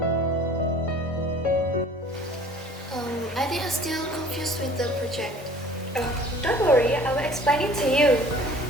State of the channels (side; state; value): both; normal; correlation 0.49